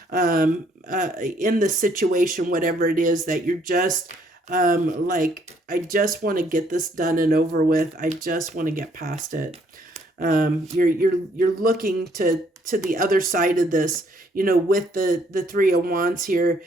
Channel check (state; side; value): normal; both; correlation 0.66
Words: in the situation, whatever it is that you're just I just want to get this done and over with. I just want to get past it. You're looking to to the other side of this, with the Three of Wands here,